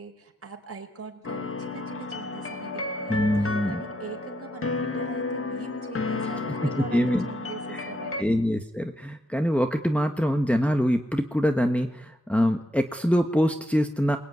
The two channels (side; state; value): both; normal; correlation 0.81